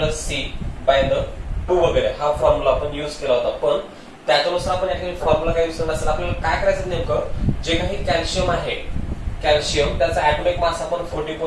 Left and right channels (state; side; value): identical; both; correlation 1.00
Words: C by the 2 वगैरे हा फॉर्म्युला आपण युज केला होता. पण त्याच्यानुसार आपण या ठिकाणी फॉर्म्युला काय युज करणार असेल आपल्याला काय करायचं नेमकं जे काही कॅल्शियम आहे कॅल्शियम त्याचा ॲटॉमिक मास आपण